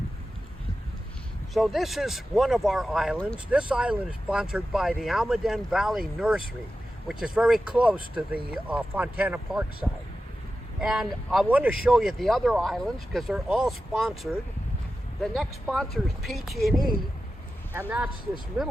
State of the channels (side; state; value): both; normal; correlation 0.92